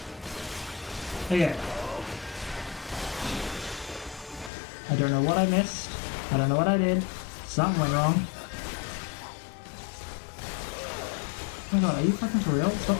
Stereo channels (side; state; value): right; drops out; at 4.5 s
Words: Okay. I don't know what I missed. I don't know what I did. Something went wrong. Oh my god, are you fucking for real?